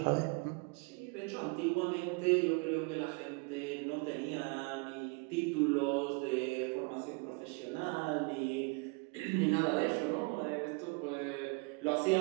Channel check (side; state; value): left; quieter; 30.3 dB